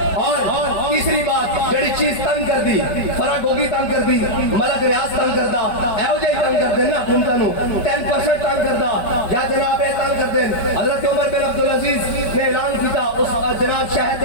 اور تیسری بات جڑی چیز تنگ کر دی، فرا گوگی تنگ کر دی، ملک ریاض تنگ کردا، اے ہو جے تنگ کر دیں نا حکومتوں 10% تنگ کردا یا جناب یہ تنگ کر دیں. حضرت عمر بن عبدالعزیز نے اعلان کیتا اس جناب شہر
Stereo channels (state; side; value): late; right; 5.2 ms